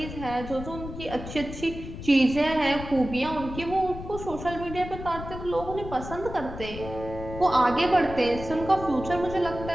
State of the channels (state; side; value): noise; left; rumble, 10 dB below the sound